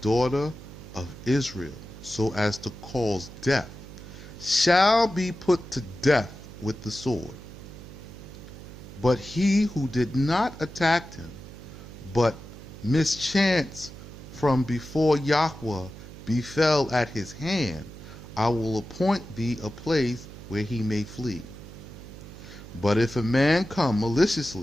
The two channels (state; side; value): noise; right; hum, 15 dB below the sound